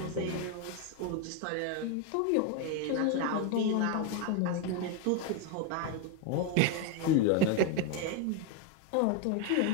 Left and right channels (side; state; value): both; different; correlation 0.01